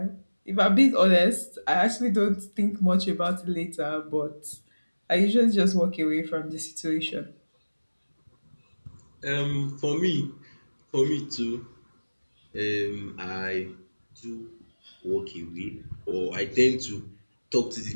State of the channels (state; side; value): inverted; both; correlation -1.00